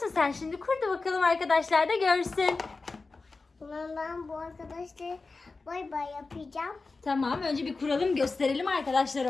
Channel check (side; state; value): right; quieter; 3.9 dB